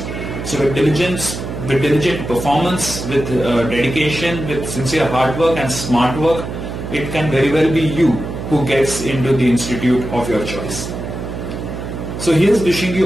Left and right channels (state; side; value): noise; right; hum, 7 dB below the sound